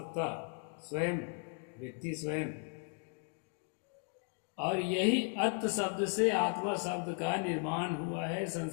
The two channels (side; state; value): right; quieter; 37.9 dB